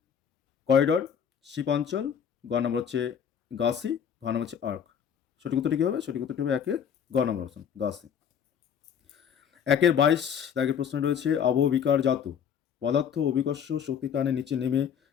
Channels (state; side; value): quieter; right; 8.0 dB